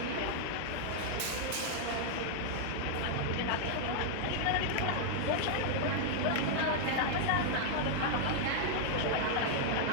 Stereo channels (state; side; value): different; both; correlation -0.01